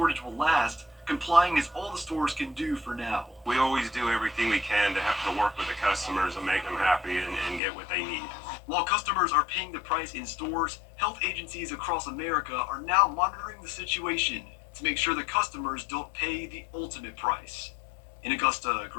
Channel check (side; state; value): right; drops out; at 7.6 s